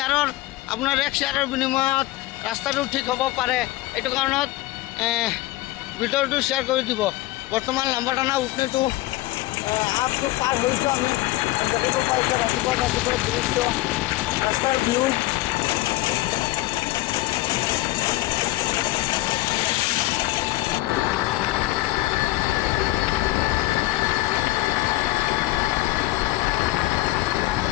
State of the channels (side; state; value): right; quieter; 18.5 dB